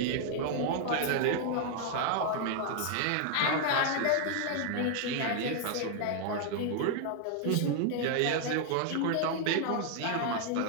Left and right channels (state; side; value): different; both; correlation 0.00